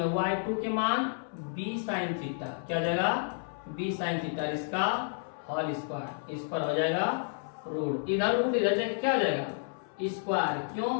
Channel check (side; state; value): right; silent; 57 dB below the other